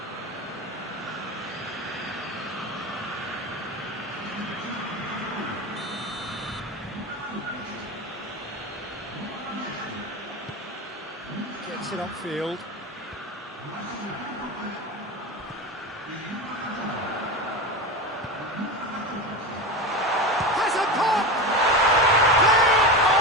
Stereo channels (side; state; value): both; normal; correlation 0.23